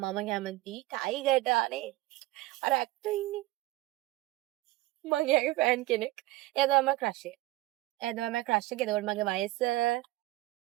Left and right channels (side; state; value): left; quieter; 18.4 dB